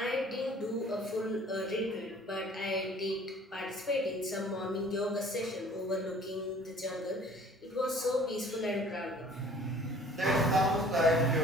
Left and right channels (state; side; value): normal; both; correlation 0.52